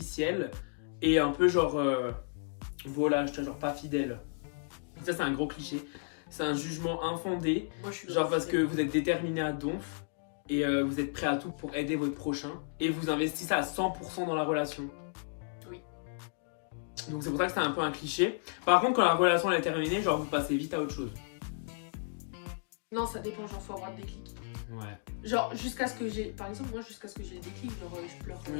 et un peu genre. Voilà, je te genre pas fidèle. Ça, c'est un gros cliché. C'est un jugement infondé. Moi, je suis genre parce que vous êtes déterminé à donf et vous êtes prêt à tout pour aider votre prochain et vous investissez à 100% dans la relation. Oui. Donc c'est pour ça que c'est un peu un cliché. Par contre, quand la relation elle est terminée, genre vous passez vite à autre chose. Non, ça dépend, genre faut avoir le déclic. Ouais. Genre jusqu'à ce que j'ai, par exemple moi jusqu'à ce que j'ai le déclic, genre je pleure.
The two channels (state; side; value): silent; right; digital silence